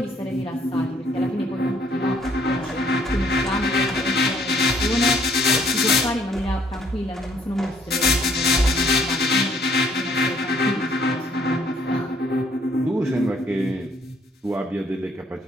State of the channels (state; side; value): normal; both; correlation 0.64